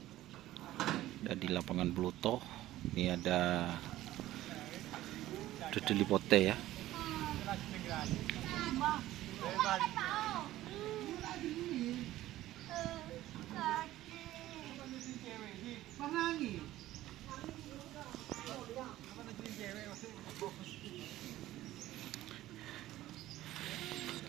Ada di lapangan Bluto. Ini ada Dudeli Pote ya.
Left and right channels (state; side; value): quieter; left; 15.0 dB